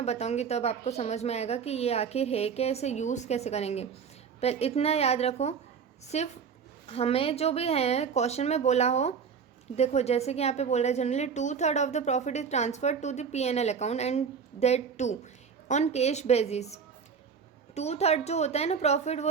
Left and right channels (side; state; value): left; quieter; 6.4 dB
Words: बताऊंगी, तब आपको समझ में आएगा कि ये आखिर है क्या, इसे यूज़ कैसे करेंगे। पर इतना याद रखो, सिर्फ हमें जो भी है क्वेश्चन में बोला हो, देखो जैसे कि यहाँ पे बोल रहा है generally 2/3 of the profit is transferred to the P&L account and that too on cash basis. 2/3 जो होता है ना प्रॉफिट,